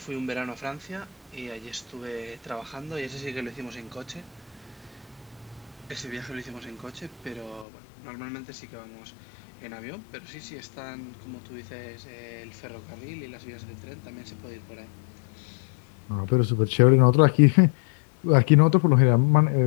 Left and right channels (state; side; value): drops out; right; at 7.7 s